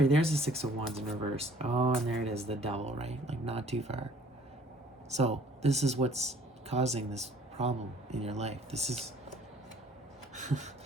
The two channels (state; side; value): normal; both; correlation 0.56